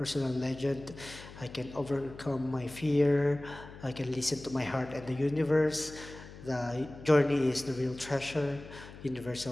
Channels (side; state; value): left; noise; hum, 16 dB below the sound